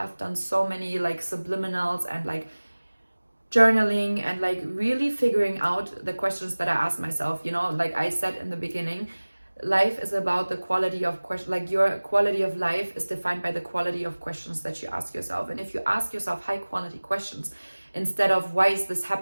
done so many like subliminals and like journaling and like really figuring out the questions that I ask myself. You know, like I said in the beginning, life is about the quality of question. Like, your quality of life is defined by the quality of questions that you ask yourself. And if you ask yourself high quality questions instead of why is this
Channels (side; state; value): both; inverted; correlation -1.00